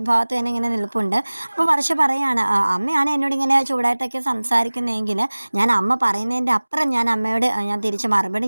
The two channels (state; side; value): inverted; both; correlation -1.00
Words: തന്നെ ഇങ്ങനെ നിൽപ്പുണ്ട്. അപ്പോൾ വർഷ പറയാണ്, അമ്മയാണ് എന്നോട് ഇങ്ങനെ ചൂടായിട്ടൊക്കെ സംസാരിക്കുന്നതെങ്കിൽ ഞാൻ അമ്മ പറയുന്നതിൻ്റെ അപ്പുറം ഞാൻ അമ്മയോട് ഞാൻ തിരിച്ച്